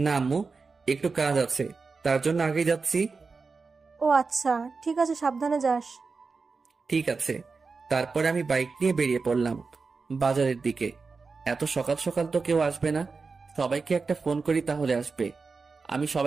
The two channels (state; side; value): quieter; left; 4.5 dB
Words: আম্মু, একটু কাজ আছে, তার জন্য আগে যাচ্ছি। ও আচ্ছা, ঠিক আছে, সাবধানে যাস। ঠিক আছে। তারপরে আমি বাইক নিয়ে বেরিয়ে পড়লাম বাজারের দিকে। এত সকাল সকাল তো কেউ আসবে না, সবাইকে একটা ফোন করি তাহলে আসবে। আমি